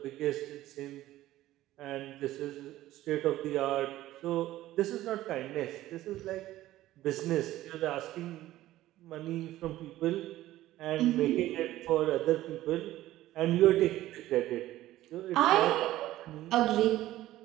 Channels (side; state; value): left; quieter; 15.1 dB